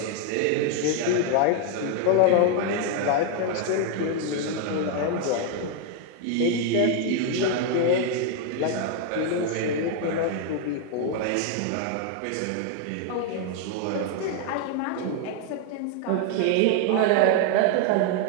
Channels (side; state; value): both; different; correlation 0.00